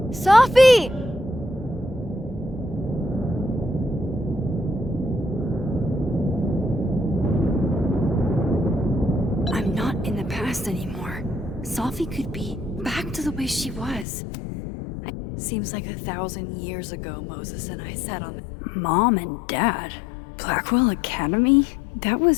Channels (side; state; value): right; drops out; at 14.1 s